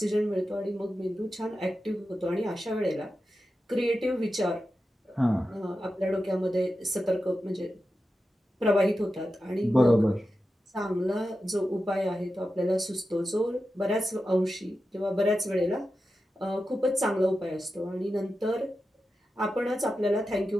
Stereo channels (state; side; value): normal; both; correlation 0.91